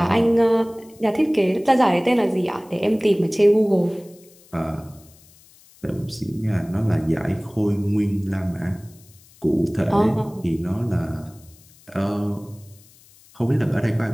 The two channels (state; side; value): noise; left; hiss, 27 dB below the sound